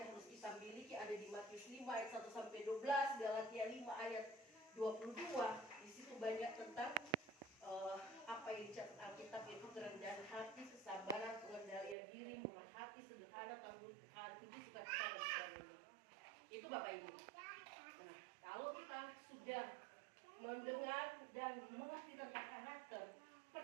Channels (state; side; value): drops out; left; at 12.0 s